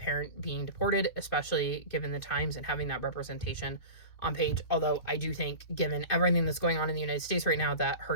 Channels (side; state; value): right; late; 2.8 ms